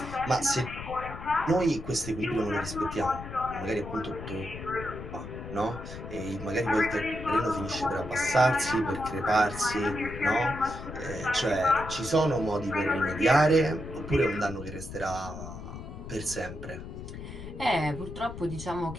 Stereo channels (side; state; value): left; noise; rumble, 10 dB below the sound